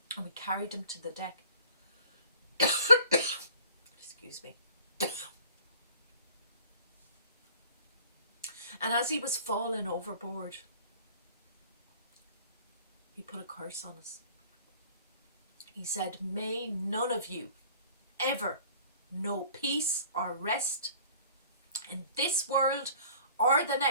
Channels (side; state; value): both; inverted; correlation -0.49